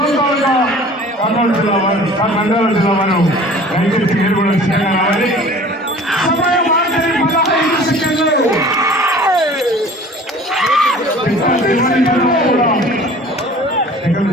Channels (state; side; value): normal; both; correlation 0.46